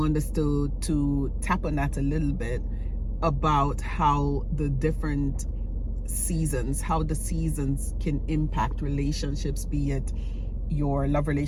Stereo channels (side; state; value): both; identical; correlation 1.00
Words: us to tap on that a little bit, about how the different seasons, how the seasons can impact relationships, be it your love